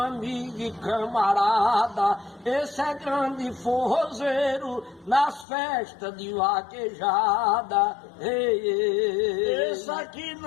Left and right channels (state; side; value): drops out; right; at 5.5 s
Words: e camarada. Esse é grande forrozeiro nas festas de vaquejada. Ei, ei. Esse aqui